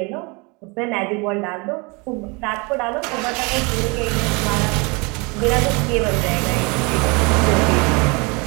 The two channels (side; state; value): left; quieter; 28.7 dB